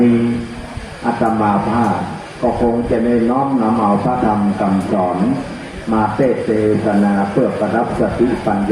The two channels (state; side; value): identical; both; correlation 1.00